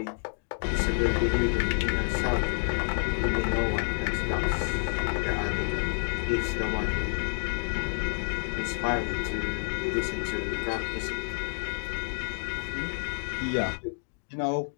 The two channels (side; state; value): right; silent; 59 dB below the other